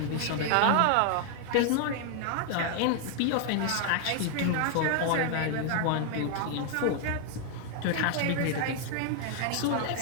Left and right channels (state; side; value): different; both; correlation 0.00